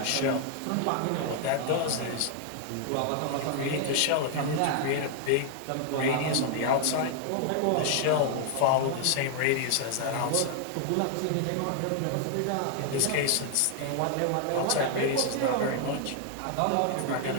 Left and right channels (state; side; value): different; both; correlation 0.00